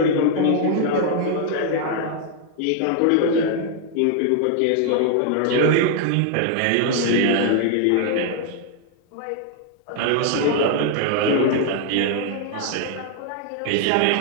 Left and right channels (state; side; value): different; both; correlation 0.00